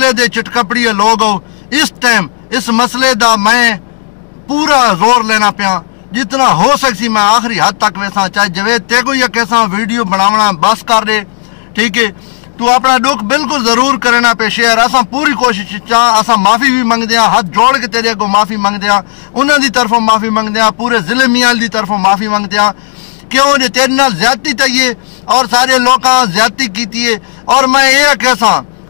دے چٹکپڑی لوگ ہو اس ٹائم اس مسئلے دا میں پورا زور لینا پیا جتنا ہو سکسی میں آخری حد تک ویسا چاہے جوید تے کو یا کیسا ویڈیو بناونا بس کر دے ٹھیک ہے تو اپنا دکھ بالکل ضرور کرنا پہ شیئر اساں پوری کوشش چاہ اساں معافی بھی منگ دیاں ہاتھ جوڑ کے تیرے کو معافی منگ دیاں انہاں دی طرفوں معافی منگ دیاں پورے ضلع میال دی طرفوں معافی منگ دیاں کیوں جو تیرے نال زیادتی تائیے اور سارے لوکاں زیادتی کیتی ہے اور میں یہ کیسا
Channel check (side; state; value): right; silent; digital silence